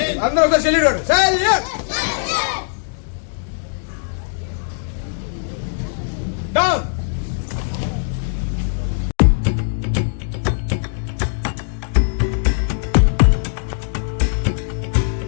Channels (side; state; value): right; silent; digital silence